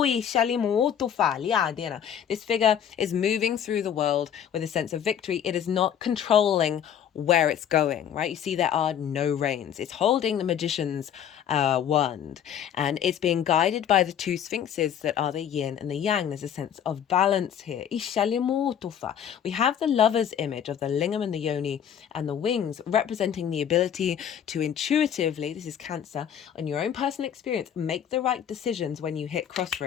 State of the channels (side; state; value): right; quieter; 9.1 dB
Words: figure is moving through the world with a sense of victory. It is not controlling where it's going, right? You see, there are no reins. It's holding the magician's wand, and it's being guided by the two sphinxes that are the yin and the yang. There's a sense of balance here. We have the lover's image of the lingam and the yoni and the wings, representing the ability to intuitively, this is Cancer, on your own personal experience, make the right decisions when you hit